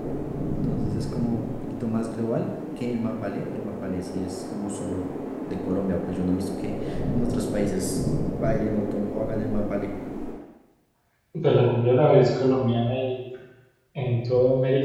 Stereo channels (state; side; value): identical; both; correlation 1.00